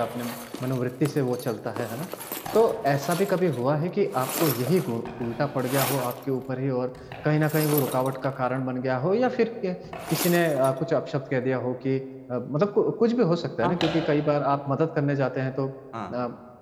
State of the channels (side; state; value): both; identical; correlation 1.00